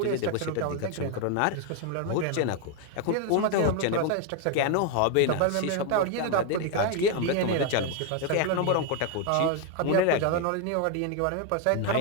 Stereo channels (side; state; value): both; different; correlation 0.01